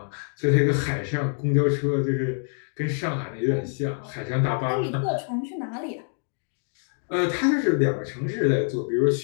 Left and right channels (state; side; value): silent; right; 61 dB below the other